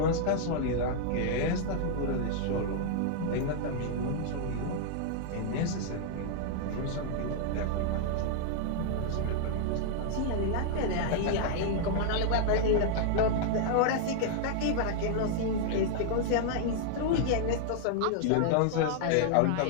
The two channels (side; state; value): both; different; correlation -0.01